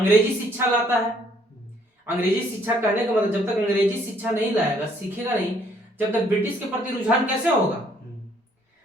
शिक्षा लाता है। अंग्रेजी शिक्षा कहने का मतलब जब तक अंग्रेजी शिक्षा नहीं लाएगा, सीखेगा नहीं, जब तक ब्रिटिश के प्रति रुझान कैसे होगा?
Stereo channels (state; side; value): normal; both; correlation 0.64